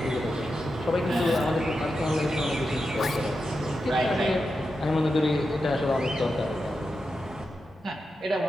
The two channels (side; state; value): both; normal; correlation 0.89